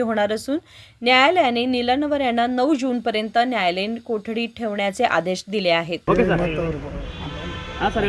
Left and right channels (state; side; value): identical; both; correlation 1.00